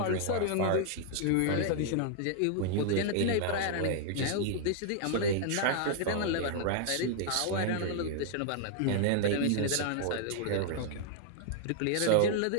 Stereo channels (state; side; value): different; both; correlation -0.01